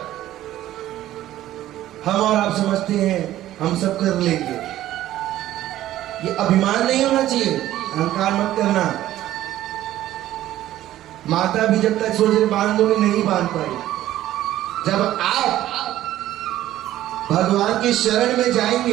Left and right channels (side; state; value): left; quieter; 13.7 dB